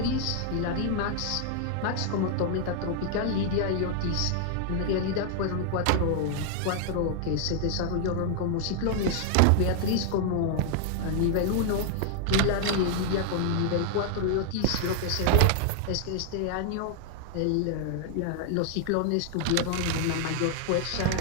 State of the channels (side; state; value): both; different; correlation 0.00